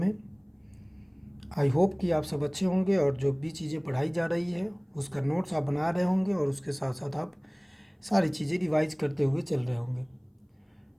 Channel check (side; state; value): both; identical; correlation 1.00